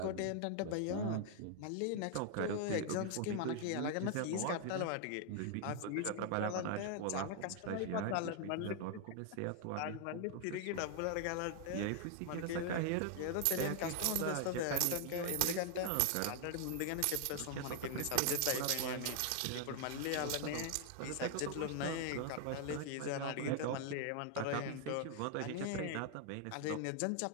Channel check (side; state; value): both; different; correlation 0.00